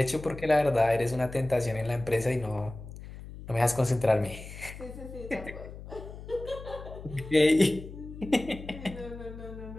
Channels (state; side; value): noise; left; hum, 13 dB below the sound